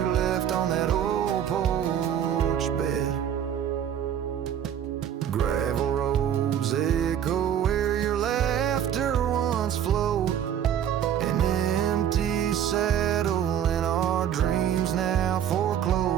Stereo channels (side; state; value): left; quieter; 9.6 dB